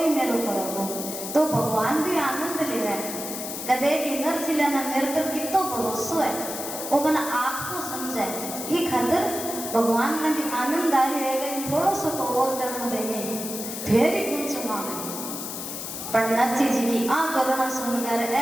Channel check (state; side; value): noise; left; hiss, 7 dB below the sound